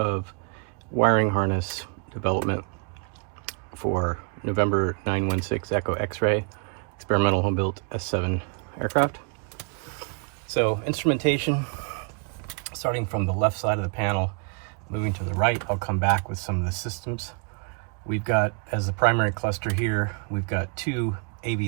wiring harness development for November 916 Echo X-Ray experimental home-built S7 aircraft. So instrumentation, starting from the left side of the panel, moving to the right, I'll come back with some of the systems. We've got, as the primary cluster here, we've got two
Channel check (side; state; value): left; quieter; 37.1 dB